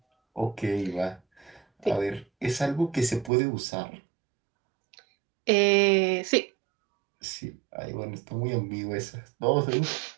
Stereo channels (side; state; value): left; drops out; at 3.3 s